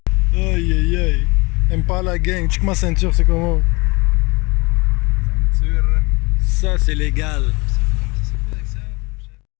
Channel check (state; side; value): quieter; right; 26.0 dB